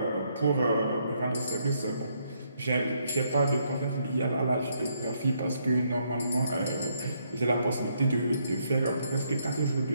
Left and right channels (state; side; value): inverted; both; correlation -0.73